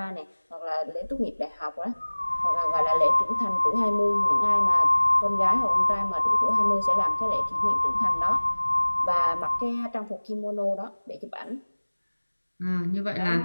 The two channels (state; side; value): inverted; both; correlation -1.00